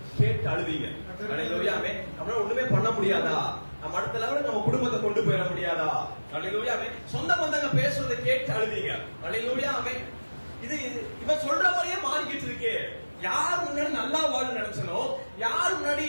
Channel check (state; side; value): inverted; both; correlation -1.00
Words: கேட்டு அழுவீங்க. அல்லேலூயா. நம்மளால ஒண்ணுமே பண்ண முடியாதா? நம்ம அடுத்த லெவலுக்கு நம்ம குடும்பத்தை கொண்டு போயிட முடியாதா? அல்லேலூயா. சொந்த பந்தங்க பேசுறதை கேட்டு அழுவீங்க. அல்லேலூயா. இது இவன் சொல்ற மாதிரியே மாறிக்கிட்டு இருக்கே. யார் முன்னாடி நல்லா வாழ நினைச்சனோ, யார் முன்னாடி